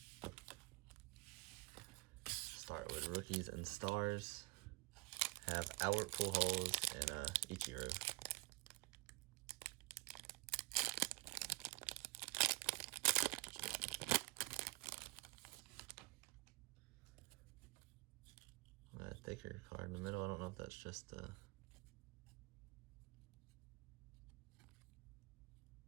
Start with Rookies and Stars. Have Albert Pujols and Ichiro. A thicker card in the middle. I don't know if that's just I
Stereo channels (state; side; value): quieter; left; 23.9 dB